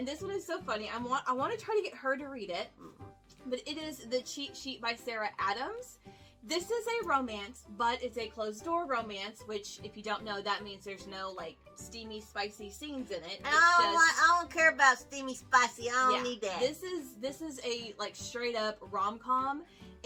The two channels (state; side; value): identical; both; correlation 1.00